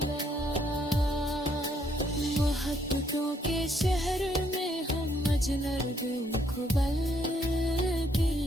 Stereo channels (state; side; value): normal; both; correlation 0.70